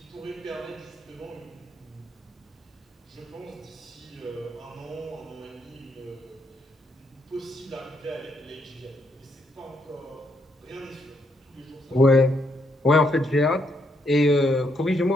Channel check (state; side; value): normal; both; correlation 0.76